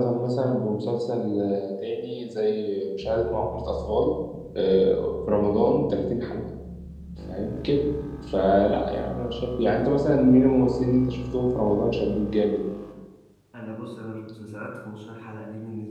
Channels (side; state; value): both; identical; correlation 1.00